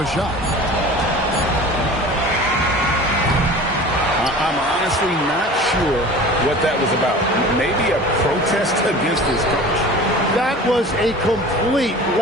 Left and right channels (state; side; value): normal; both; correlation 0.39